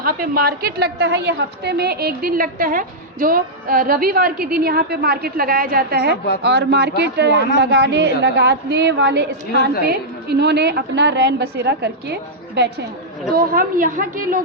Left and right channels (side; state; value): both; normal; correlation -0.09